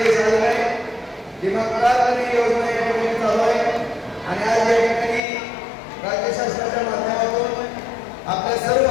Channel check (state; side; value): drops out; right; at 5.2 s